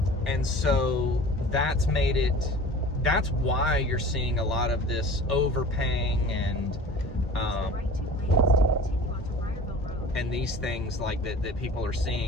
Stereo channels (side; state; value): both; normal; correlation 0.42